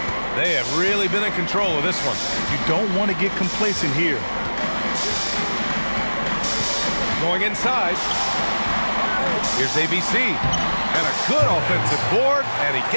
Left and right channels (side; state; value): both; inverted; correlation -1.00